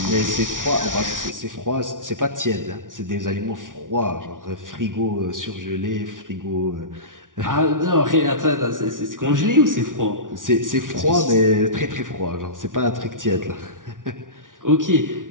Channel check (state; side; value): late; left; 0.88 ms